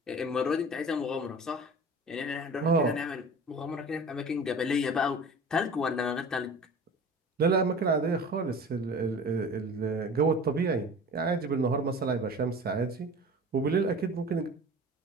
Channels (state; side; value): normal; both; correlation 0.39